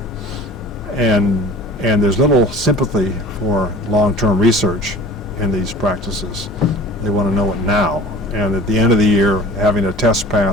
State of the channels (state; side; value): normal; both; correlation 0.43